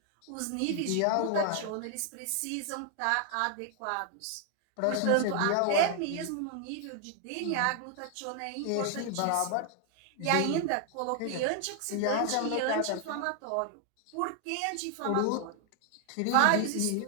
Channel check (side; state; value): both; different; correlation 0.00